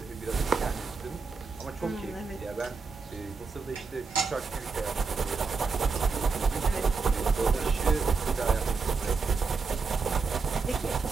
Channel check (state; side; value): quieter; left; 4.8 dB